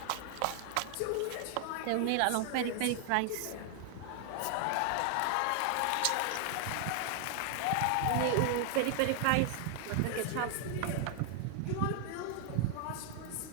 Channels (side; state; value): both; different; correlation 0.00